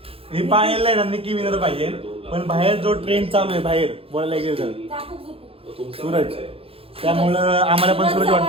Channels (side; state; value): left; late; 0.27 ms